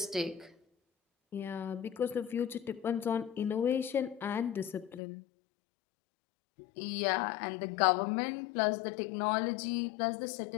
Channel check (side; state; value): right; drops out; at 5.0 s